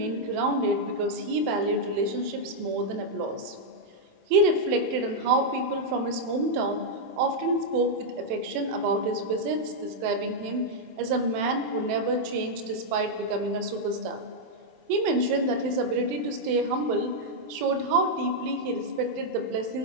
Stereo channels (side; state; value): left; late; 27 ms